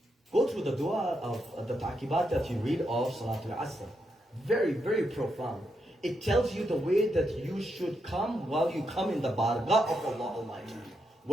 Go through the dua of the taqibat that you read of Salatul Asr. Very, very profound. It tells you the way that you should come while you come in the bargah of Allah Almighty.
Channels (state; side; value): normal; both; correlation 0.82